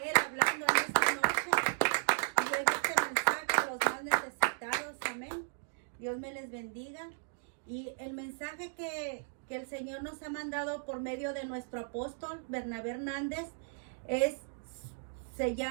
Él hablando en esta noche y lleve este mensaje a los más necesitados. Amén. Dios me les bendiga. Y el mensaje que el Señor nos ha mandado por medio de nuestro apóstol Bernabé Hernández se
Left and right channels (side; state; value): left; silent; digital silence